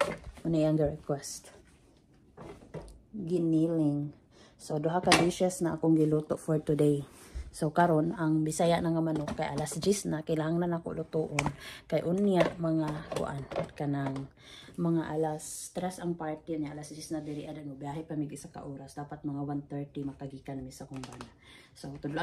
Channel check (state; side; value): identical; both; correlation 1.00